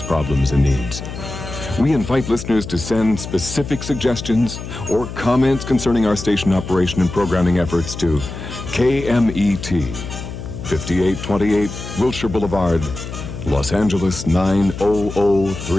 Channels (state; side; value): noise; left; hum, 9 dB below the sound